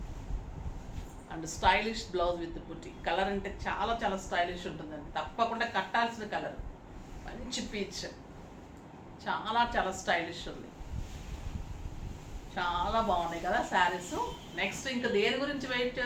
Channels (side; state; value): both; identical; correlation 1.00